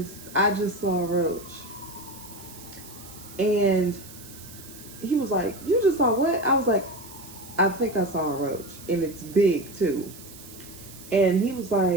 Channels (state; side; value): noise; right; hiss, 17 dB below the sound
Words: I just saw a roach. And he was like, you just saw what? I was like, I think I saw a roach, and it's big too. And he was